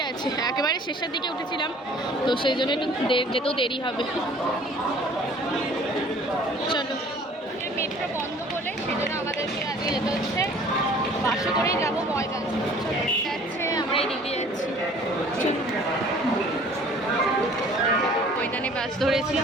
আছে, একেবারে শেষের দিকে উঠেছিলাম তো সেই জন্য একটু যেতেও দেরি হবে। চলো মেট্রো বন্ধ বলে সেই জন্য আমাদেরকে আজকে যেতে হচ্ছে বাসে করেই যাবো ময়দান। চলো যাচ্ছে, আমরা এই দিকে যাচ্ছি। ময়দানে বাস ধরেছি,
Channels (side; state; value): both; normal; correlation 0.51